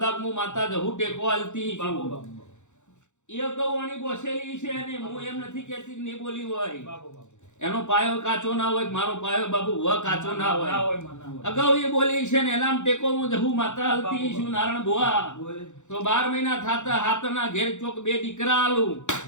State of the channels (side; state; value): right; late; 0.84 ms